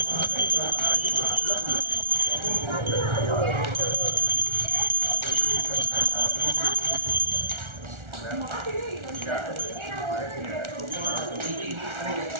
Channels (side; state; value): left; late; 1.4 ms